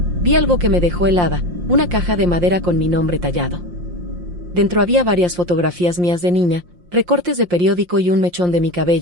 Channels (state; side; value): late; left; 5.7 ms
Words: vi algo que me dejó helada, una caja de madera con mi nombre tallado. Dentro había varias fotografías mías de niña, recortes de periódico y un mechón de mi